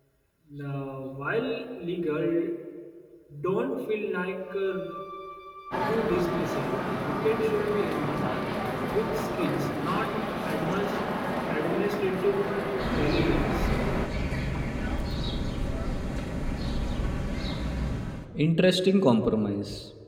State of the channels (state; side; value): identical; both; correlation 1.00